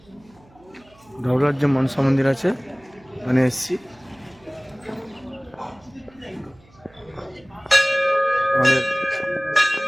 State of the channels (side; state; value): right; noise; hum, 29 dB below the sound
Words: ঢাবলার যে মনসা মন্দির আছে ওখানে এসছি। আমাদের